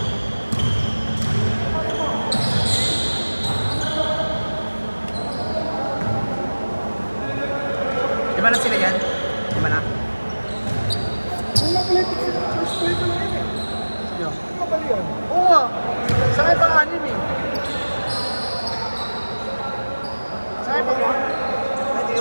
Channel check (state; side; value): inverted; both; correlation -1.00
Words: Di ba na sila yan? Di ba na? Wala pala ito. First play pa lang eh. Sino? Ano ba yun? Oo nga. Sa akin pang-anim eh. Sa akin pang-anim. Ay, hindi